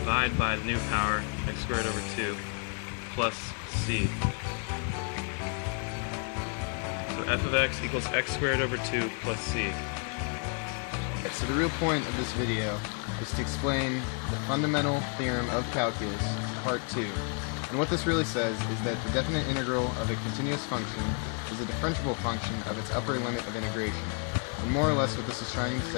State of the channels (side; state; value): right; quieter; 39.1 dB